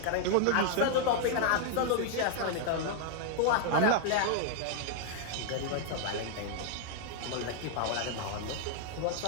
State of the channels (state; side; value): different; both; correlation -0.01